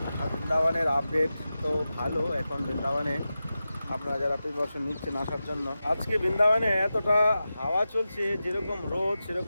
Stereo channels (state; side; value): inverted; both; correlation -0.93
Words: আর বৃন্দাবনের আপডেট তো ভালো এখন বৃন্দাবনে, আপনারা যারা প্রিপারেশন নিচ্ছেন আসার জন্য। আজকে বৃন্দাবনে এতটা হাওয়া চলছে, যেরকম রোদ